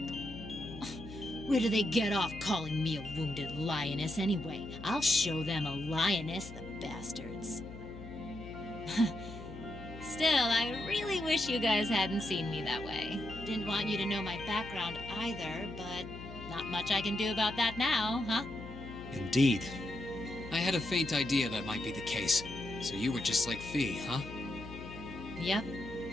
Where do they get off calling me a wounded lioness anyway? I'll show them a lioness, the bastards. Still, I really wish you guys hadn't seen me that way. Didn't want you to know my background either, but not much I can do about that now, huh? Indeed. I had a faint idea that might be the case. So you were just like Fee, huh? Yep.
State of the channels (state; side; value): noise; left; hum, 13 dB below the sound